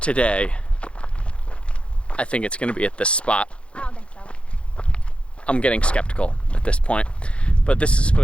I think it's gonna be at this spot. I don't think so. I'm getting skeptical at this point, but this is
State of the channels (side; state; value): right; late; 0.059 ms